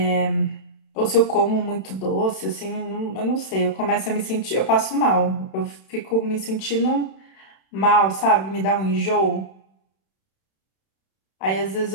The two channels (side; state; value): right; late; 31 ms